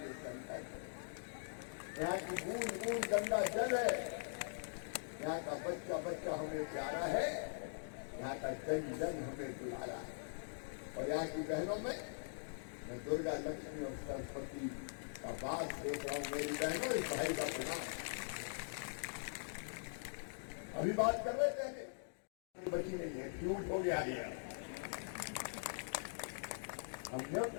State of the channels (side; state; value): right; silent; digital silence